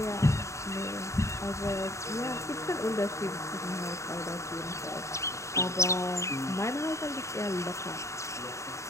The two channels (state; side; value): late; right; 0.14 ms